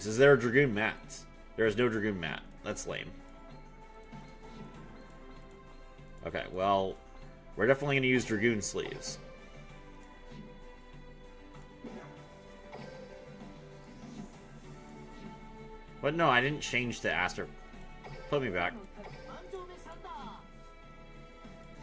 Is there a Dragoon mat? There is no Dragoon mat. That's lame. Okay, well, we're definitely going to use Dragoon sleeves. But no, I didn't change to Aster. Put me back. 満場目サンダー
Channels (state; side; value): identical; both; correlation 1.00